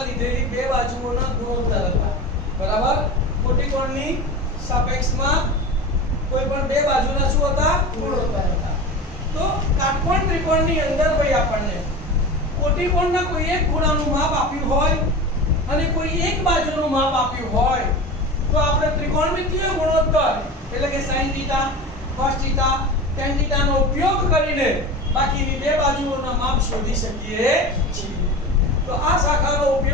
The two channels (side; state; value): both; normal; correlation 0.30